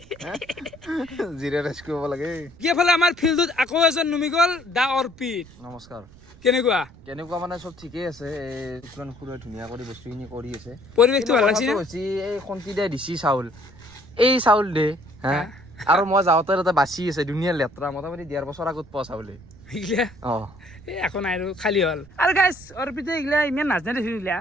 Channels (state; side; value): noise; right; rumble, 22 dB below the sound